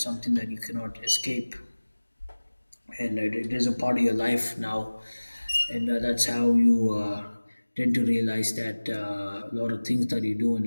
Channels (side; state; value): both; inverted; correlation -1.00